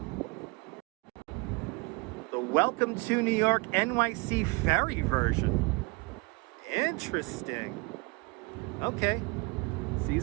The Welcome to New York NYC ferry version. Interesting. Okay. See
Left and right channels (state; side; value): quieter; left; 28.1 dB